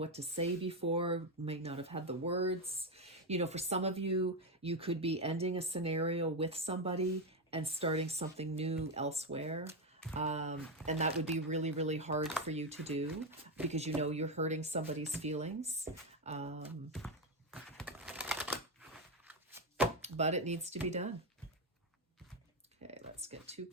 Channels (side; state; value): both; normal; correlation 0.08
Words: to say before, may not have had the words. For some of you, you could be ending a scenario with somebody and starting something new elsewhere. And that would be really, really hard for you to do because you're hurting somebody's feelings. But it needs to be done. Okay, let's get 2